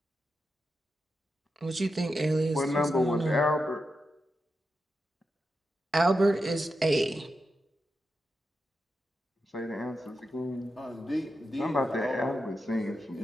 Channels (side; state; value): both; normal; correlation 0.88